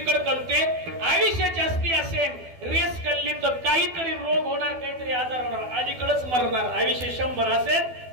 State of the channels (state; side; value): late; left; 12 ms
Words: कळते. आयुष्य जास्ती असेल, रेस कळली तर काहीतरी रोग होणार, काहीतरी आजार होणार, अलीकडेच मरणार. आयुष्य 100 असेल